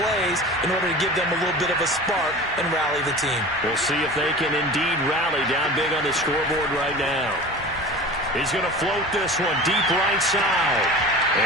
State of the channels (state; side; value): normal; both; correlation 0.36